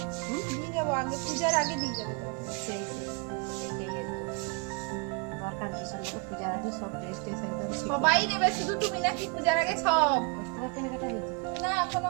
পিস নিয়ে যাবো, আগে পূজার আগে নিয়ে যাবো তোমাকে। সেই এটাই দরকার, ডিসেম্বর পূজার আগে সব ড্রেস ট্রেস একদম ঠিক সবাই নেবে, শুধু তুমি নাকি পূজার আগে সব? 10 টাকা কেনাকাটা হয়েছে। না এখনো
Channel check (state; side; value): quieter; left; 32.1 dB